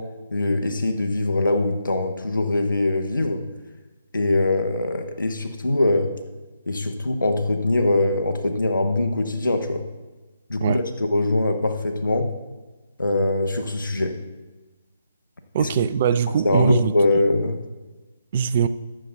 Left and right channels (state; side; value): inverted; both; correlation -0.80